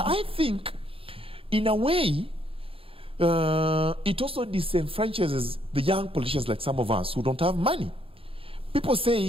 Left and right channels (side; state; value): left; late; 0.27 ms